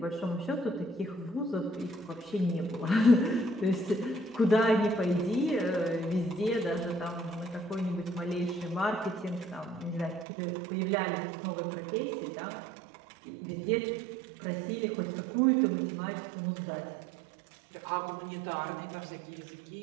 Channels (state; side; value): drops out; left; at 10.2 s